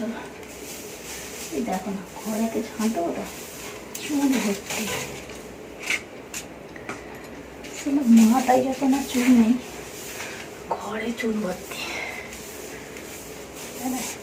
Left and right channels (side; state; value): both; identical; correlation 1.00